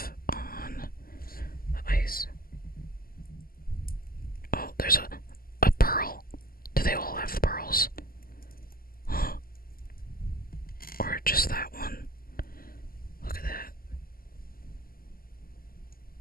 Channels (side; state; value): right; late; 0.42 ms